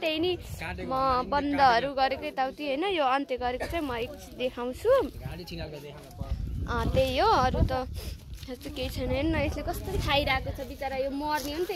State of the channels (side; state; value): both; identical; correlation 1.00